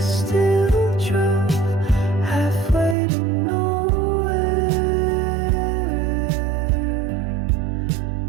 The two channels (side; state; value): left; drops out; at 3.0 s